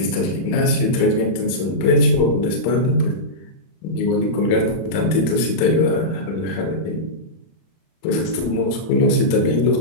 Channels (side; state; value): right; late; 31 ms